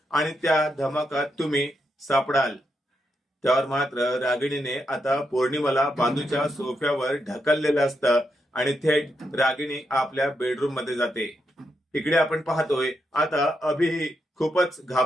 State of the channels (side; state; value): both; normal; correlation 0.82